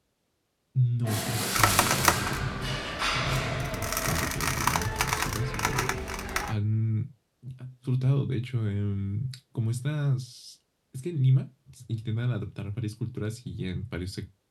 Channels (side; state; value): both; identical; correlation 1.00